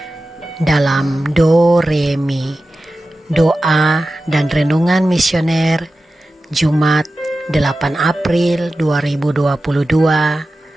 dalam Do Re Mi, doa dan renungan misioner Jumat 8 April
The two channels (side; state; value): both; normal; correlation 0.94